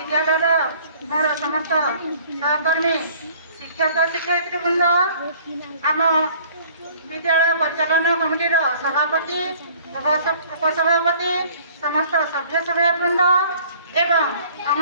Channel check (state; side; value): inverted; both; correlation -0.53